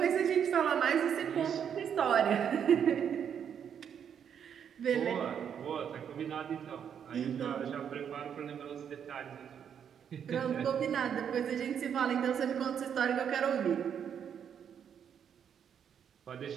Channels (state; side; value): quieter; left; 8.2 dB